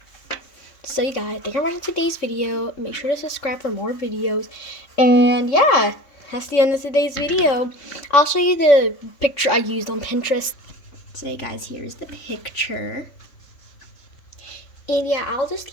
So you guys, thank you for watching today's video. Make sure to subscribe for more videos. And yeah, that's the end of today's video. I'll show you the picture I used on Pinterest. So you guys, here's the picture. And yeah, I'll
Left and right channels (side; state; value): right; late; 3.6 ms